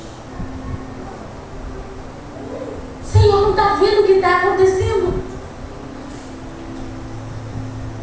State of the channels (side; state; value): both; identical; correlation 1.00